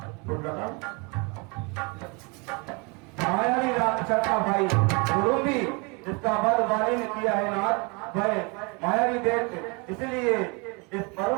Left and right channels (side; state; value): left; quieter; 30.7 dB